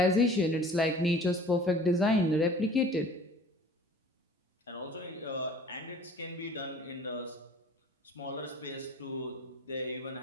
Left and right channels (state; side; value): normal; both; correlation 0.47